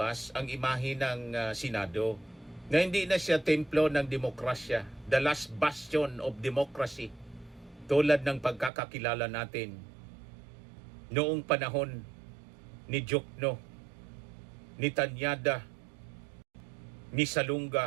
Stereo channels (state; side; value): drops out; left; at 8.7 s